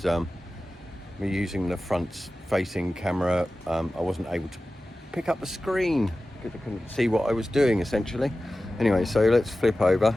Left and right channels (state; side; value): normal; both; correlation 0.95